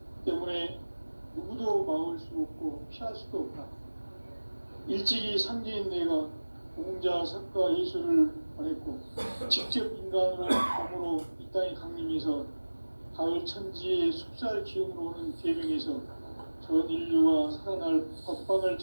때문에 누구도 막을 수 없고 피할 수도 없다. 일찍이 상제인 내가 공자, 석가, 예수를 보냈고 직접 인간으로 몸으로 이 땅에 강림해서 가을 천지의 숲살 기운으로 오는 계명에서 전 인류가 살아날 법방을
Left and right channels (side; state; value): both; inverted; correlation -1.00